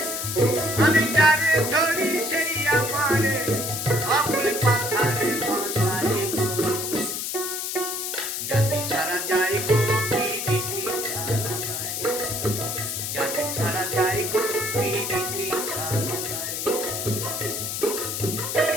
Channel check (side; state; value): left; noise; hiss, 3 dB below the sound